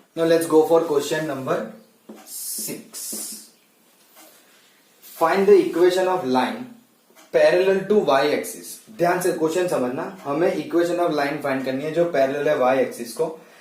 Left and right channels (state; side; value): identical; both; correlation 1.00